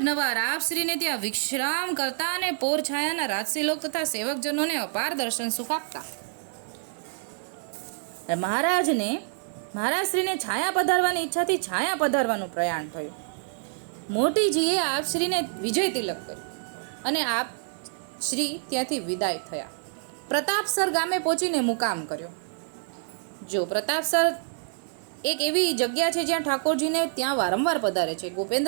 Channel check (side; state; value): left; silent; 60 dB below the other